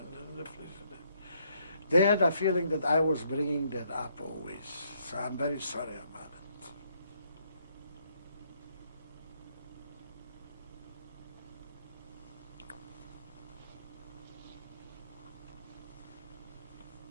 the fridge. They had a feeling that I was bringing that up always. So I'm very sorry about it.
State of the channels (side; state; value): both; inverted; correlation -0.71